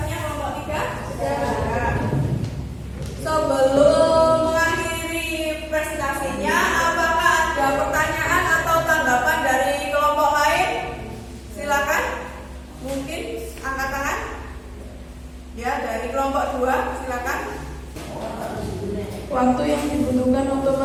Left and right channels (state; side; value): identical; both; correlation 1.00